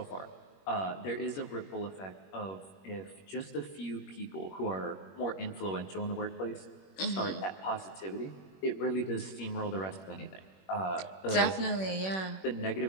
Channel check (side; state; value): right; late; 21 ms